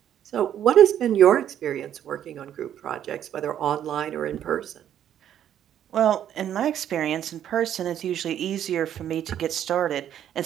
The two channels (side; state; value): left; quieter; 10.3 dB